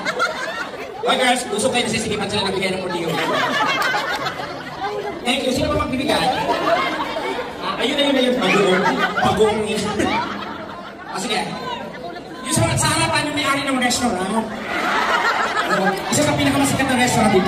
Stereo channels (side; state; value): both; identical; correlation 1.00